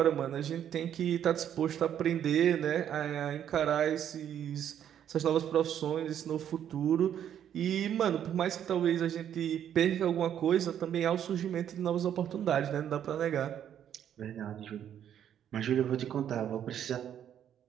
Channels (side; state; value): left; quieter; 9.7 dB